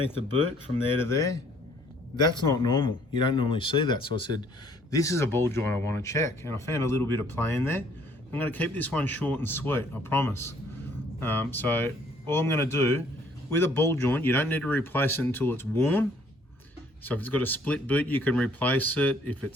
the boot from there to there. That's not normal. You don't normally see that. So I said, this is a ball joint I want to check. And I found a little bit of play in there. I'm going to keep this one short and sweet, I promise. So all I'm going to do, with a ball joint, you don't need to replace it until it's worn. So if it's got a split boot, you can replace it. If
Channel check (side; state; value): both; normal; correlation 0.61